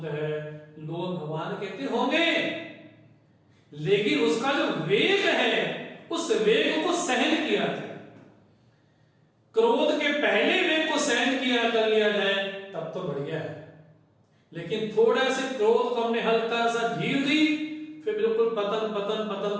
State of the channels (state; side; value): identical; both; correlation 1.00